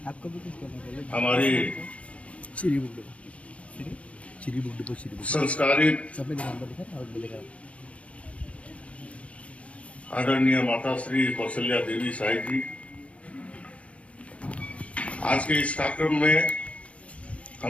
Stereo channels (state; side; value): late; right; 0.063 ms